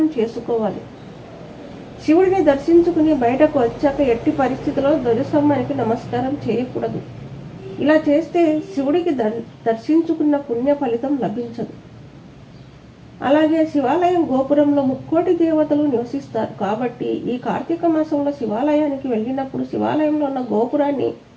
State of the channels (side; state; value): both; identical; correlation 1.00